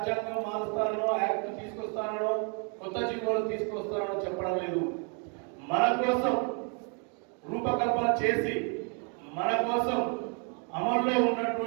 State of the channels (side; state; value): left; quieter; 38.9 dB